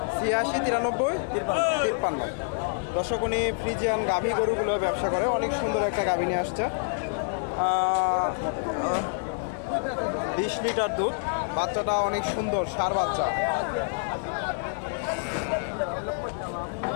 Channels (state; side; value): silent; right; digital silence